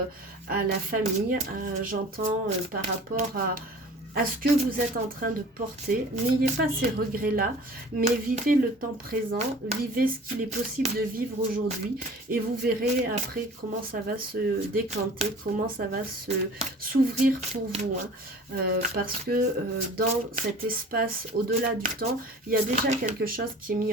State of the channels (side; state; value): both; normal; correlation 0.44